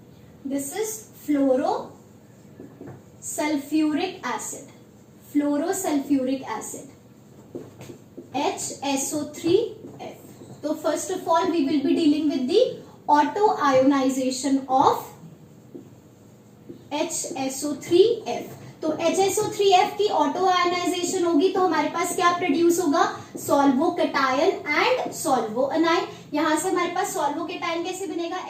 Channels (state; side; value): identical; both; correlation 1.00